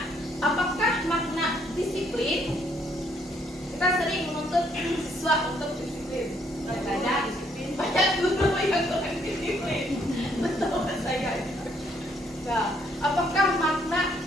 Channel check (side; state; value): both; normal; correlation 0.69